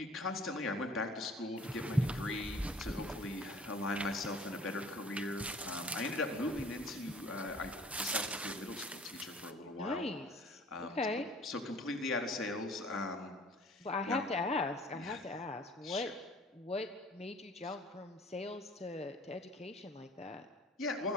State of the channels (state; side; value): normal; both; correlation 0.51